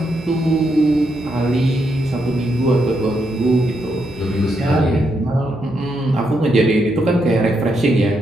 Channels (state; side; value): noise; right; hum, 21 dB below the sound